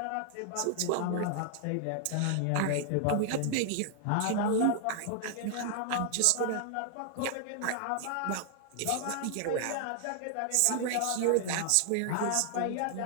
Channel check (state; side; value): different; both; correlation 0.00